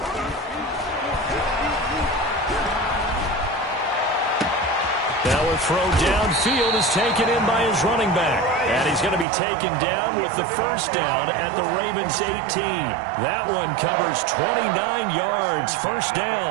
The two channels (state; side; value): drops out; left; at 9.2 s